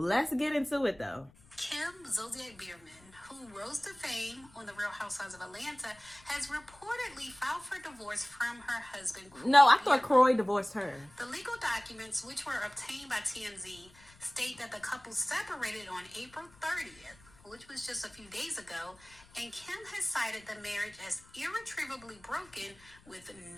get into it though. Kim Zolciak Bierman, who rose to fame on The Real Housewives of Atlanta, has reportedly filed for divorce from her husband, Kroy. No, I thought Kroy divorced her. The legal documents, which were obtained by TMZ, state that the couple separated on April 30th, which was just a few days ago, and Kim has cited the marriage as irretrievably broken with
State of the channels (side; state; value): left; noise; rumble, 26 dB below the sound